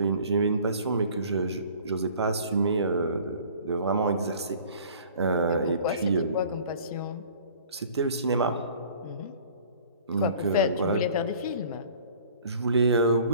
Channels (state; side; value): inverted; both; correlation -0.49